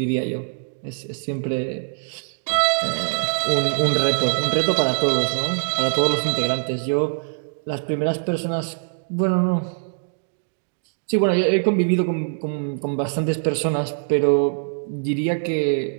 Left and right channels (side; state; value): left; silent; digital silence